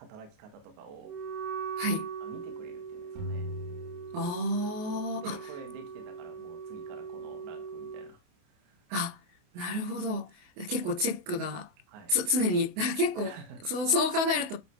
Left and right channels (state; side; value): late; left; 28 ms